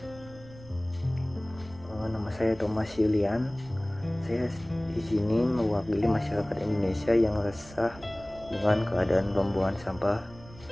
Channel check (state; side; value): noise; right; rumble, 20 dB below the sound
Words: Nama saya Thomas Yulian. Saya di sini mewakili masyarakat Indonesia yang resah dengan keadaan pembuangan sampah